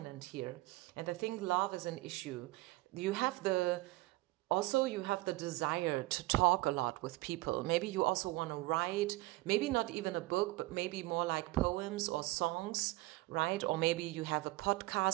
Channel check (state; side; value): quieter; left; 20.3 dB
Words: here. And I think love is an issue. You have the desire to talk a lot with people. Maybe you also want to write, maybe not even a book, but maybe more like poems or songs, right? Or maybe you have a